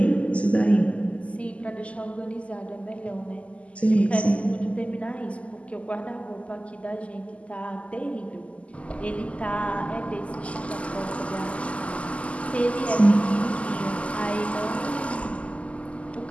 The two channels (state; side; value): late; right; 0.062 ms